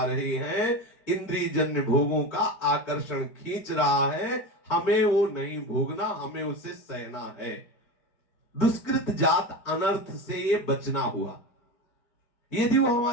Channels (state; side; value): late; right; 4.5 ms